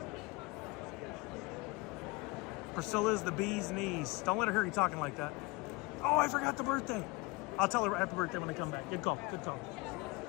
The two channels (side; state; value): right; quieter; 25.0 dB